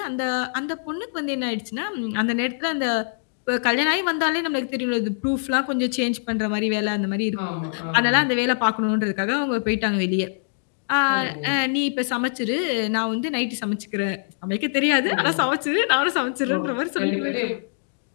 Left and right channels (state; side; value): silent; right; digital silence